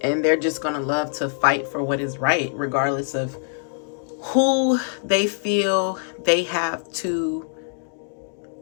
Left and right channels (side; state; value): right; silent; digital silence